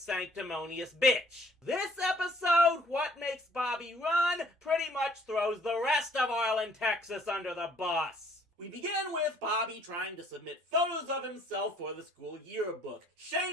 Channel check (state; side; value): normal; both; correlation 0.60